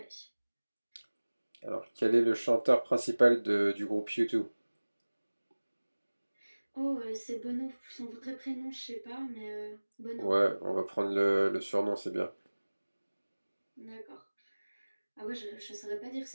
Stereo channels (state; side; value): inverted; both; correlation -1.00